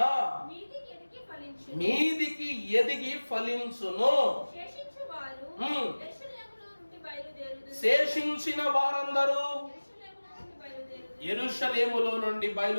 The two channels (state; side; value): inverted; both; correlation -1.00